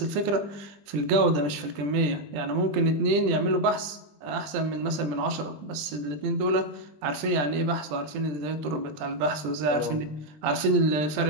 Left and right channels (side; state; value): left; late; 20 ms